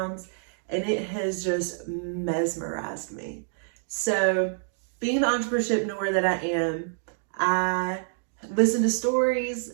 and it has just mesmerized me. So being the entrepreneurship that I am, I listen to stories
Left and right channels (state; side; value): silent; left; digital silence